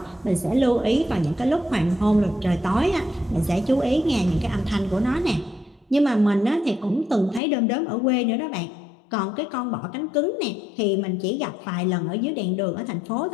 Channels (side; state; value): right; drops out; at 7.4 s